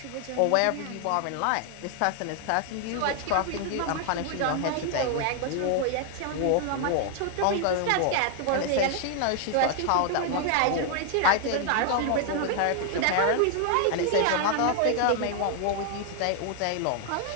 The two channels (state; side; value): different; both; correlation 0.00